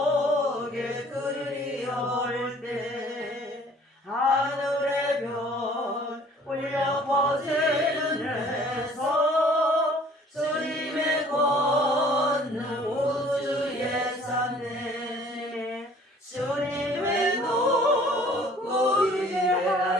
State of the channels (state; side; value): normal; both; correlation 0.54